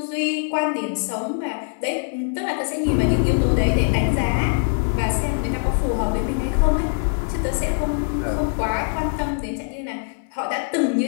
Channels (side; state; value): right; silent; 61 dB below the other